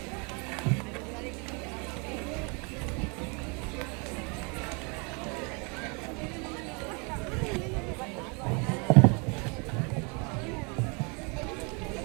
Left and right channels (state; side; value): quieter; left; 32.9 dB